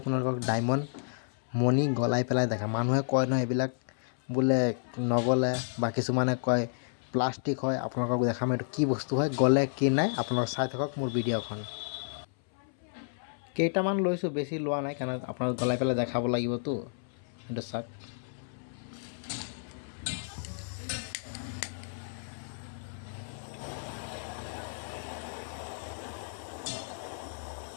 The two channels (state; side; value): silent; right; 57 dB below the other